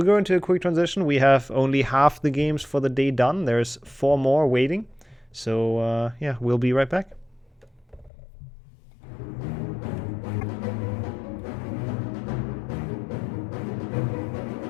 go into a quick transition. We have only half the games for the day done. There's 4 more waiting. So, yeah, we'll be right back.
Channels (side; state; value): right; drops out; at 8.1 s